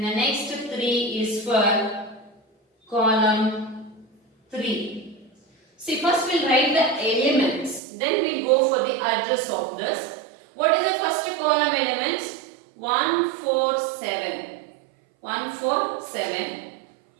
the next 3 is for column 3. 3. See, first we'll write the elements, then we'll go for the address of this. What is the first column elements? 1, 4, 7. 1, 4, 7.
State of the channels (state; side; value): drops out; left; at 7.8 s